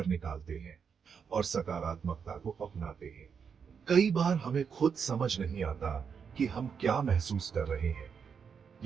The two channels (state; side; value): quieter; left; 6.5 dB